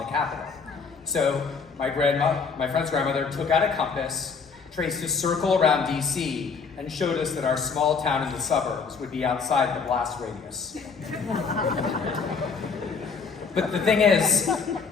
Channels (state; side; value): quieter; right; 5.2 dB